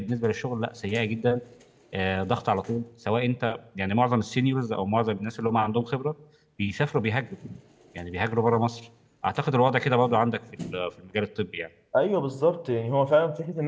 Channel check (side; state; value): both; identical; correlation 1.00